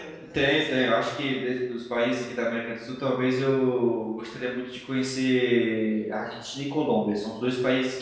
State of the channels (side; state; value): both; identical; correlation 1.00